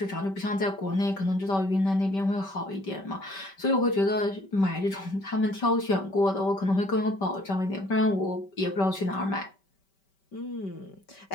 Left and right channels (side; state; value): right; late; 5.2 ms